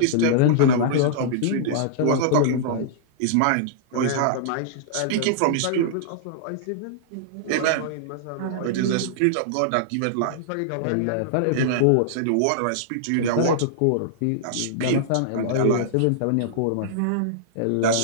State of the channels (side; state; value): both; different; correlation -0.01